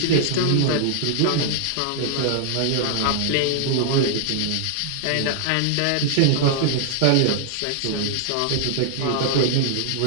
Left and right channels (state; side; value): different; both; correlation -0.01